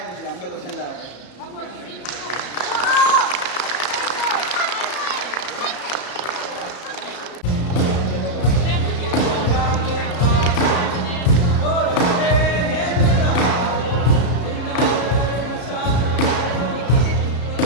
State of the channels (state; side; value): late; right; 34 ms